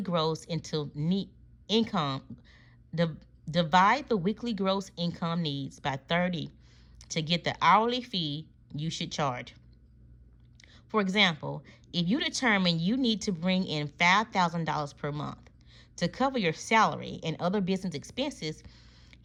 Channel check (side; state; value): both; identical; correlation 1.00